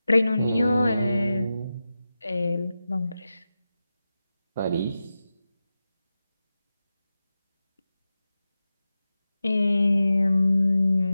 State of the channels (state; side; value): inverted; both; correlation -0.93